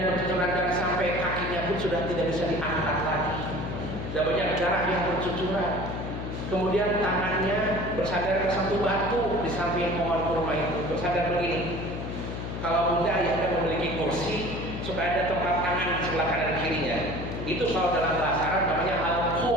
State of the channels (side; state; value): left; noise; hum, 6 dB below the sound